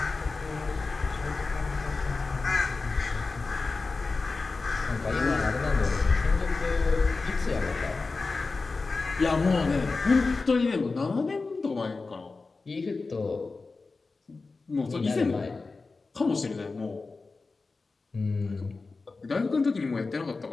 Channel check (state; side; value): quieter; right; 3.9 dB